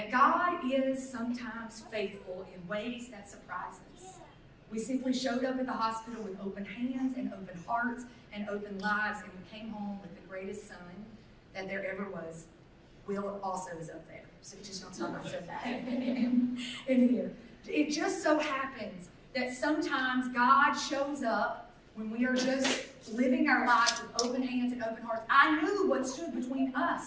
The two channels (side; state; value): both; identical; correlation 1.00